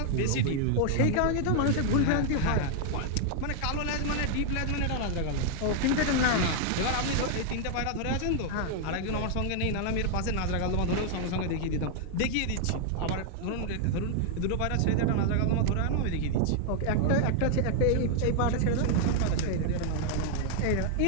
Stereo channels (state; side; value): different; both; correlation 0.00